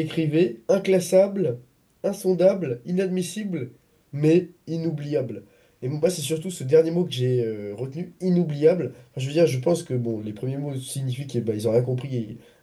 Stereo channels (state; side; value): identical; both; correlation 1.00